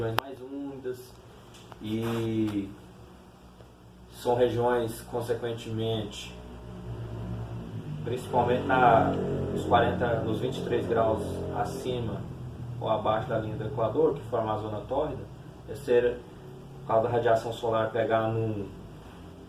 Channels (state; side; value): identical; both; correlation 1.00